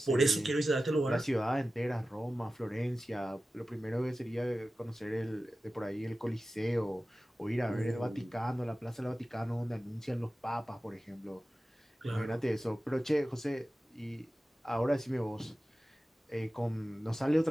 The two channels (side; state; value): both; normal; correlation 0.95